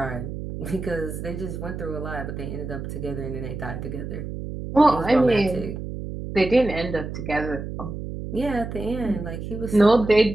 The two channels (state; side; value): noise; right; hum, 7 dB below the sound